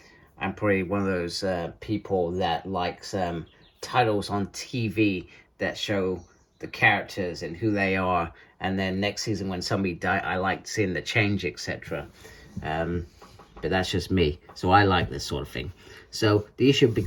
I'm probably one of those people that likes titles on TV that show the characters and who they are, and then next season when somebody dies, I like seeing the change, etc. But that's just me, so I like this sort of thing. So the issue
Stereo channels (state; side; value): identical; both; correlation 1.00